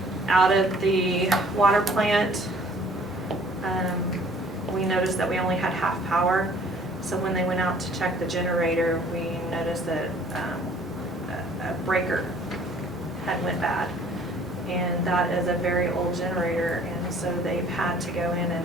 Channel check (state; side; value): normal; both; correlation 0.55